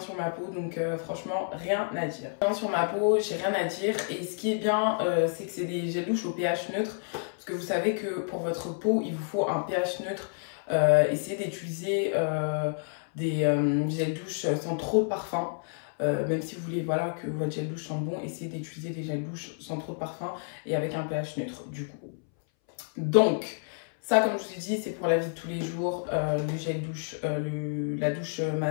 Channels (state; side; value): silent; right; 58 dB below the other